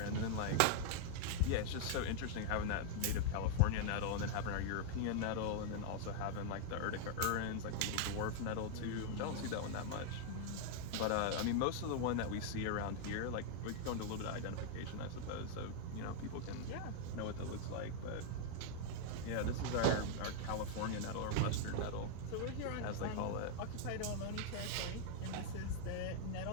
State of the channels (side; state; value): both; different; correlation -0.01